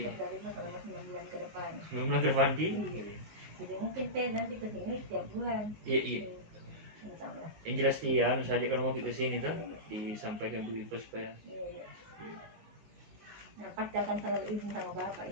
selama 9 bulan ke depan. 9 bulan ke depan Iya. Jadi mungkin nanti ke sini setiap bulan. Iya. Insyaallah. Yang jelas dia saja kalau mau ke sini tuh disampaikan Bu Ipa supaya. Iya. Nah, pasti akan selalu izin sama Bapak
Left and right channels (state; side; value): late; left; 19 ms